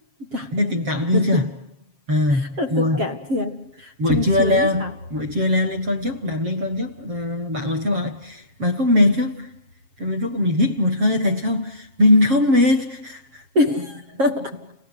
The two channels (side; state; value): left; late; 7.4 ms